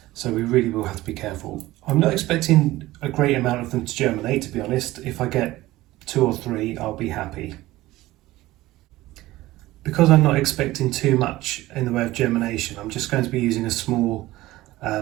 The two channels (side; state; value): left; quieter; 17.4 dB